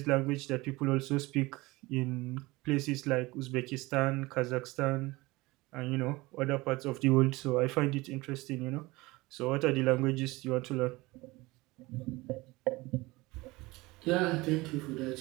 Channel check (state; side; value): quieter; left; 21.6 dB